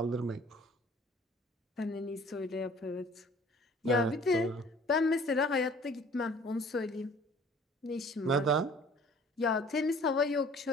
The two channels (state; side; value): normal; both; correlation 0.52